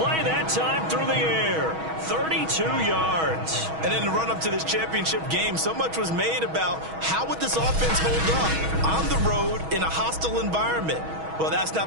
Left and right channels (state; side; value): late; left; 6.2 ms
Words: that time through the air. 32 yards. And in the run-up to this championship game, so much was made about how would this offense hold up on the road in a hostile environment. Well, that's